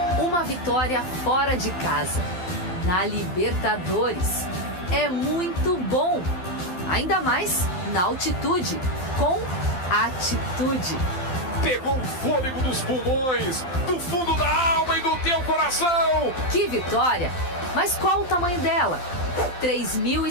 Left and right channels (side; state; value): right; late; 12 ms